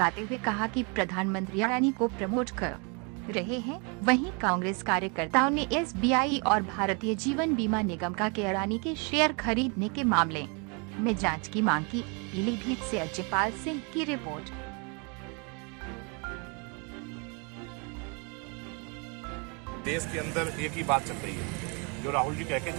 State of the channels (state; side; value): quieter; left; 33.5 dB